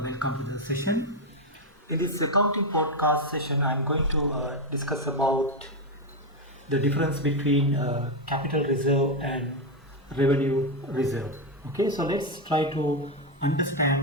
to the session. In this accounting podcast session, I'm going to discuss about the difference between capital reserve and revenue reserve. Okay, so let's try to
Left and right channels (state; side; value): normal; both; correlation 0.07